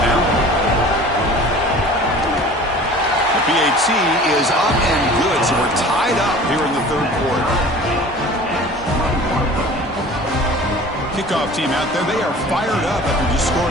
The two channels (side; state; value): both; normal; correlation 0.43